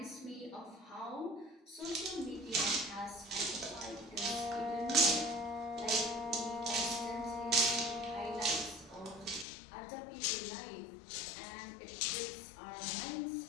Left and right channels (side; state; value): right; drops out; at 9.5 s